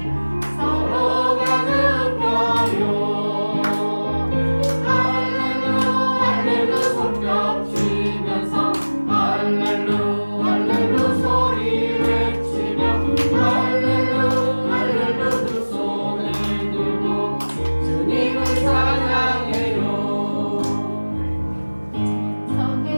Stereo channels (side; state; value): both; inverted; correlation -1.00